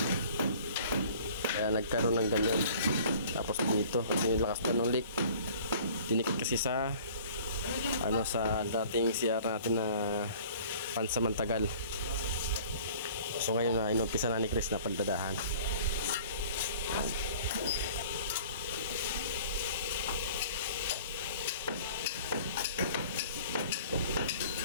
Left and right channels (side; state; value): both; inverted; correlation -0.48